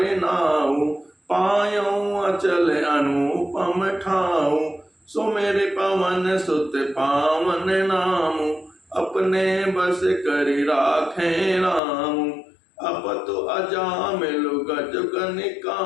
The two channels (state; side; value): drops out; right; at 11.8 s